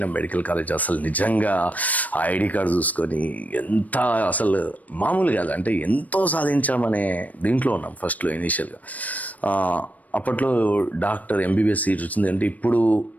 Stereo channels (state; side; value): late; right; 0.073 ms